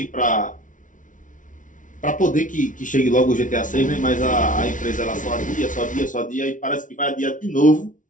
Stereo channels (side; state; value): right; late; 0.38 ms